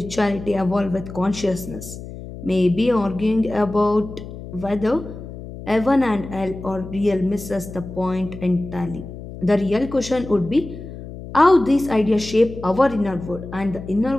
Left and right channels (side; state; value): left; noise; hum, 12 dB below the sound